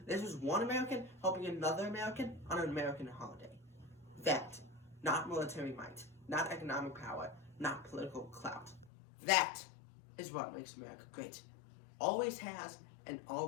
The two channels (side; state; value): right; drops out; at 8.9 s